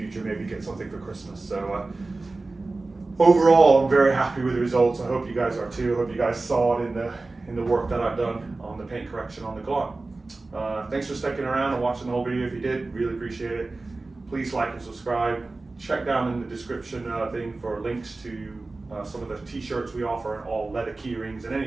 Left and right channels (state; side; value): quieter; left; 3.4 dB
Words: maybe get something for Christmas. So overall, I'm very happy with the results. I hope you guys are too. I hope you guys saw it in the work that I've done on the paint correction on the Galant. Thanks for sticking around and watching the whole video. If you did, really appreciate it. Please like and subscribe. Check down in the description thing for links to some of the t-shirts we offer, and all leather key rings, and